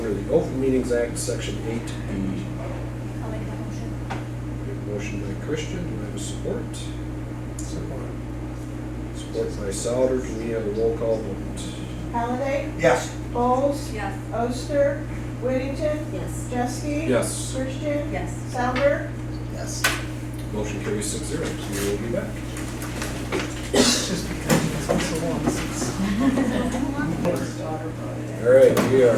the Open Meetings Act, Section 8B. I'll make that motion. Motion by Christian, do I have a support? Support. Support by Souter, can we have a roll call vote? Halliday, Yes. Bowles, Yes. Oster, Whittington, Yes. Jeske, Yes. Christian, Yes. Souter, Yes. Motion carries 6-0, so we will be back. Just because it's been so long since. All right, we Oh,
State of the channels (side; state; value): both; identical; correlation 1.00